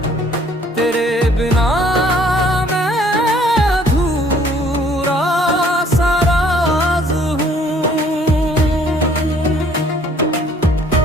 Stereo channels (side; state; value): both; normal; correlation 0.59